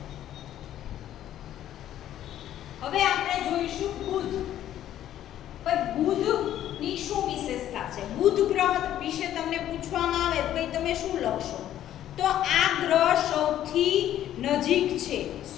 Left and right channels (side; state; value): right; quieter; 11.9 dB